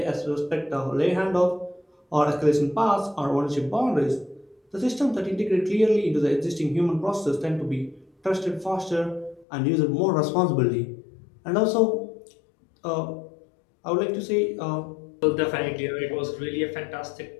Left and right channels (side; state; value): right; drops out; at 9.5 s